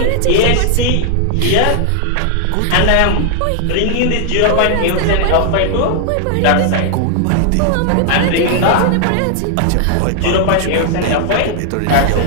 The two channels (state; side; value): different; both; correlation 0.00